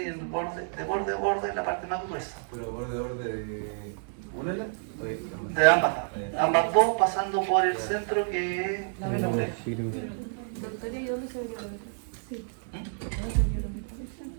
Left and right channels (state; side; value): silent; left; 58 dB below the other